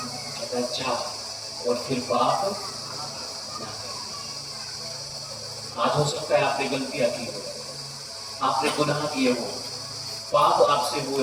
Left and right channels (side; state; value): both; identical; correlation 1.00